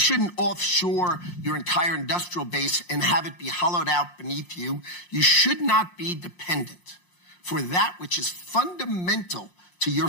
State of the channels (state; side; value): late; right; 5.6 ms